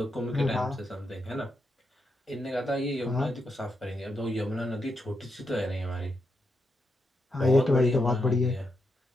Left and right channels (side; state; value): both; normal; correlation 0.83